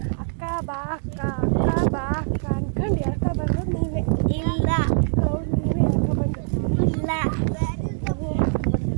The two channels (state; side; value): silent; left; digital silence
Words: ಅಕ್ಕ ಬಾ ಅಕ್ಕ ಅಕ್ಕ ಬಾ ಅಕ್ಕ ಅನ್ಕೊಂಡು ಹೇಳ್ಕೊಬಂದು ನೀವೇ. ಇಲ್ಲ ನೀವೇ ಹೇಳ್ಕೊಬಂದು. ಇಲ್ಲ.